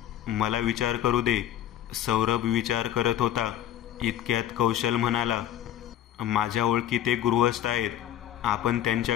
मला विचार करू दे. सौरभ विचार करत होता. इतक्यात कौशल म्हणाला, माझ्या ओळखीत एक गृहस्थ आहेत. आपण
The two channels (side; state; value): right; quieter; 11.6 dB